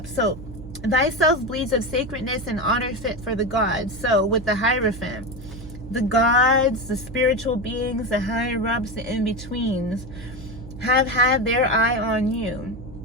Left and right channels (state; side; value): noise; right; hum, 14 dB below the sound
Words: So, thyself bleeds of sacredness and honor fit for the gods. So, with the Hierophant, the gods, the spiritual beings, the higher-ups, the in-betweens have had their eye on you.